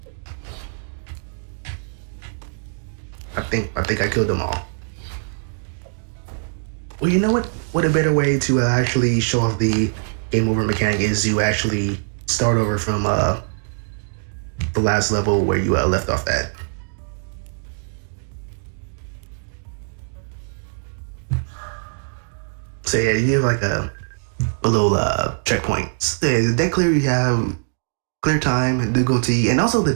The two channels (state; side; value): silent; left; digital silence